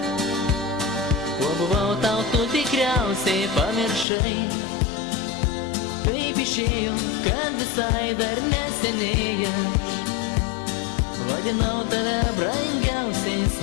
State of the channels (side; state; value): right; drops out; at 4.0 s